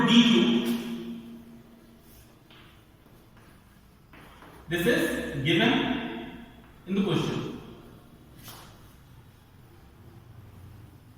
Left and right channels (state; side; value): identical; both; correlation 1.00